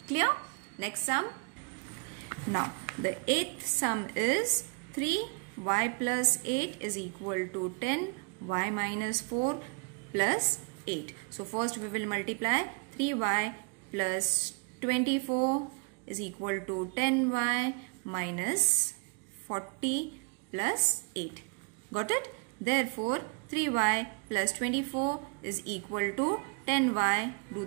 Clear? Next sum. Now the 8th sum is 3y plus 8 is equal to 10 y minus 4 plus 8. So first we will multiply 3y plus 24 is equal to 10y minus 40 plus 8. Got it? Therefore 3y plus 24 is equal to 10y. Do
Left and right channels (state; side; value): quieter; left; 34.9 dB